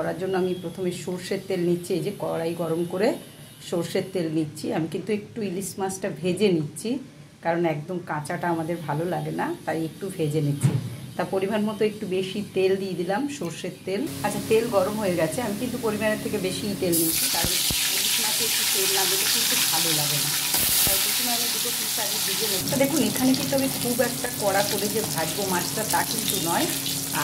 জন্য আমি প্রথমে সর্ষের তেল নিচ্ছি। এই যে কড়াই গরম করে সর্ষের তেল নিচ্ছি। আমি কিন্তু একটু ইলিশ মাছটা ভেজে নিচ্ছি, কারণ একদম কাঁচাটা আমাদের ভালো লাগে না, তাই একটু ভেজে নিচ্ছি। তা পরিমাণ মতো একটু বেশি তেল দিয়ে দিলাম, সর্ষের তেল। আচ্ছা, তেল গরম হয়ে গেছে। আমি কিন্তু পরিমাণের থেকে বেশি তেল নিচ্ছি, কারণ ইলিশ মাছে একটু তেল না দিলে কিন্তু ভালো লাগে না। তাই প্রথমে আমি দুটো পিস আগে ভেজে নেব। দেখুন, এখানে কিন্তু আমি খুব একটা কড়া করে যে ভাজবো মাছটা তা কিন্তু নয়।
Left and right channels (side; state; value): both; identical; correlation 1.00